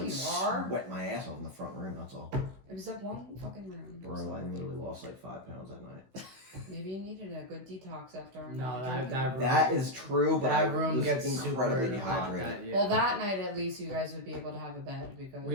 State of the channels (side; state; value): left; late; 16 ms